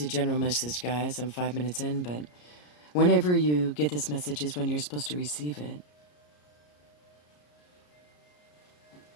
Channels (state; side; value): late; right; 33 ms